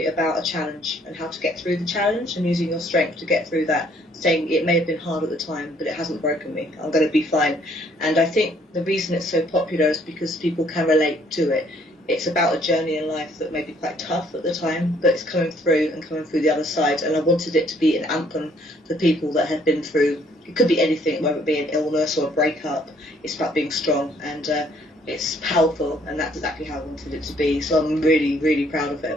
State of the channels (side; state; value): both; normal; correlation 0.64